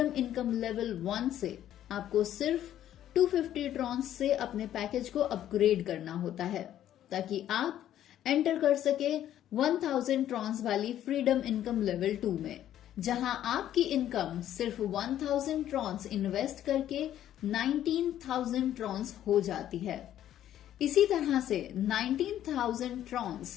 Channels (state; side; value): quieter; right; 11.6 dB